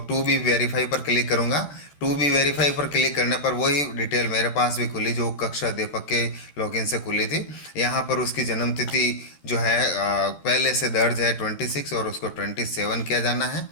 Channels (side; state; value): right; late; 14 ms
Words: टू बी वेरीफाई पर क्लिक करूँगा। टू बी वेरीफाई पर क्लिक करने पर वही डिटेल मेरे पास भी खुली जो कक्षा अध्यापक के लॉगिन से खुली थी। यहाँ पर उसकी जन्म तिथि जो है पहले से दर्ज है 26 और उसको 27 किया जाना है।